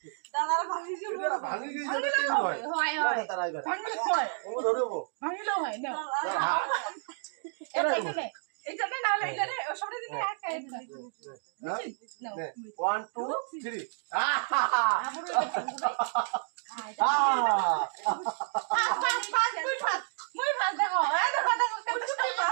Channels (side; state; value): left; silent; digital silence